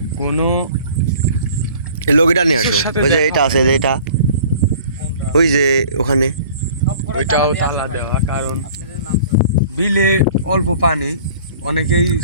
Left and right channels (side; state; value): both; inverted; correlation -0.49